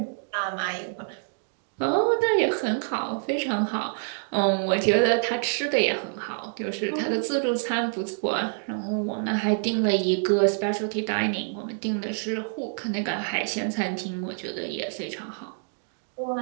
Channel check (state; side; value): silent; left; digital silence